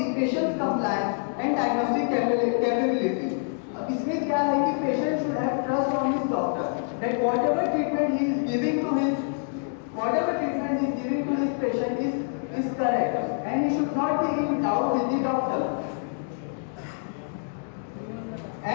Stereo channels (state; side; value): silent; right; digital silence